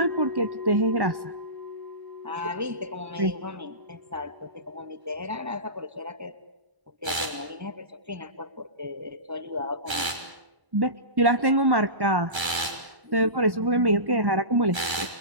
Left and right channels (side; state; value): left; late; 1.3 ms